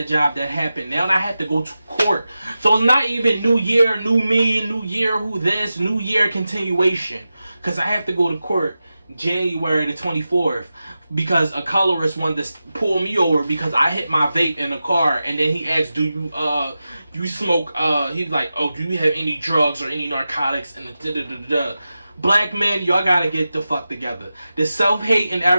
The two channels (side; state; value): both; inverted; correlation -0.93